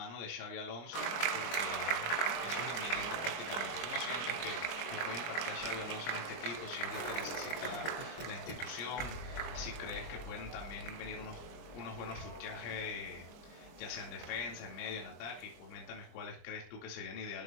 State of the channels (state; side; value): late; right; 24 ms